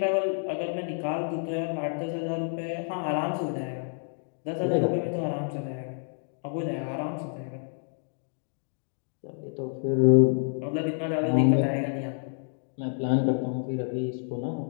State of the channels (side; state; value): right; silent; 59 dB below the other